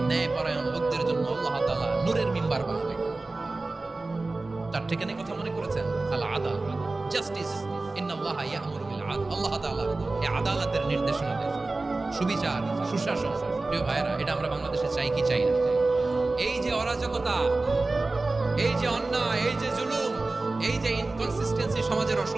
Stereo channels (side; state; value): left; quieter; 3.3 dB